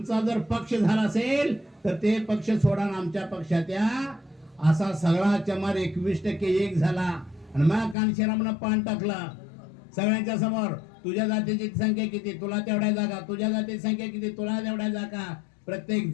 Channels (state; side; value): drops out; right; at 8.0 s